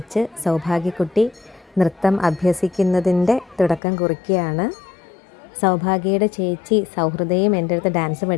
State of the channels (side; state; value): right; drops out; at 3.8 s